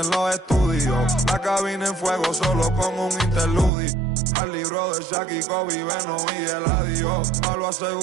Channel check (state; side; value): drops out; left; at 3.7 s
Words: los estudios. La cabina en fuego solo con un interludio. Al libro de Shaq y Kobe, Beno y Eladio. Palo